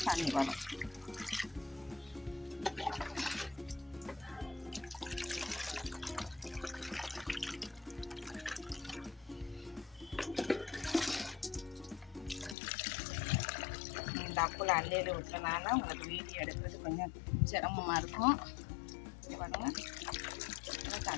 தண்ணி வரும். டப்பில் அள்ளியில் விட்டனால உங்களுக்கு வீடியோ எடுக்கிறது கொஞ்சம் சிரமமாக இருக்கும். பாருங்க,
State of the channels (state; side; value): drops out; right; at 12.6 s